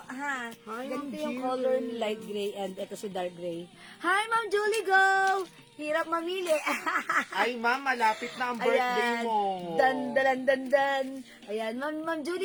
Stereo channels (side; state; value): both; identical; correlation 1.00